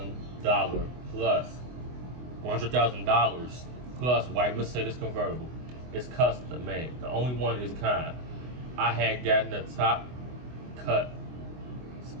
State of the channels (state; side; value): late; left; 24 ms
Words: plus white Mercedes convertible. It's custom made. The only one is kind. I had gotten the top cut